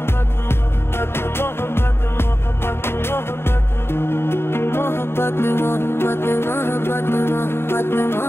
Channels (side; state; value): right; late; 0.11 ms